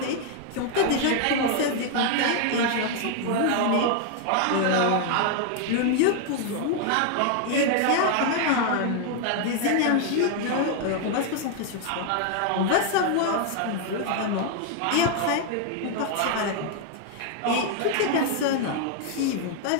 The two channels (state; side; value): different; both; correlation 0.00